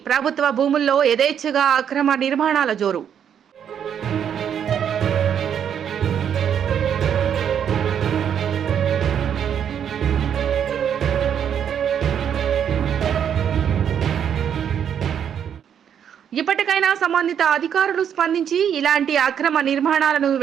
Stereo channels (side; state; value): left; quieter; 8.6 dB